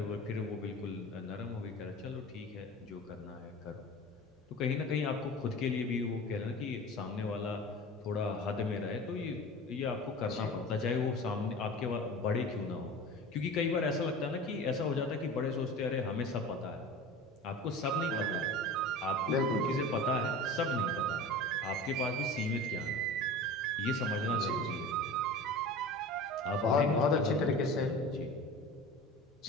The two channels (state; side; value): normal; both; correlation 0.35